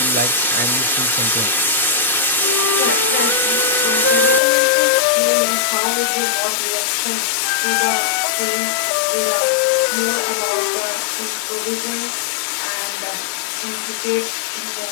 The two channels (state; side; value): drops out; right; at 4.4 s